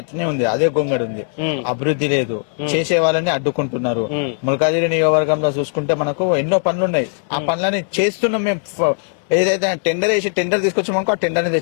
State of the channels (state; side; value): silent; right; digital silence